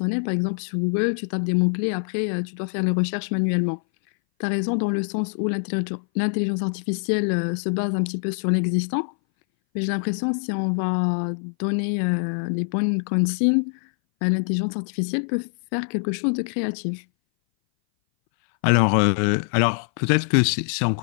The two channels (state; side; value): silent; right; 59 dB below the other